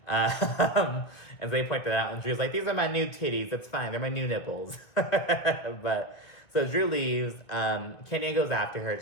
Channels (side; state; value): right; late; 2.0 ms